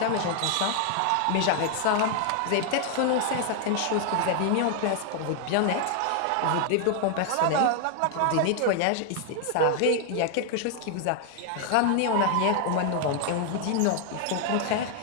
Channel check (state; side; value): different; both; correlation 0.00